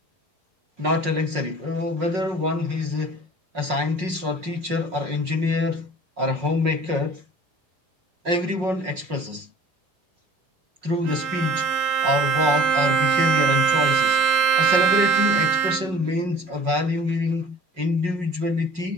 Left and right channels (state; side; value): late; left; 5.4 ms